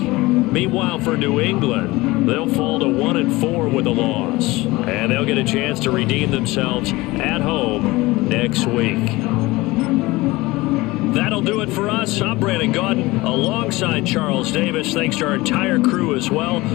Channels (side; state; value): right; quieter; 20.7 dB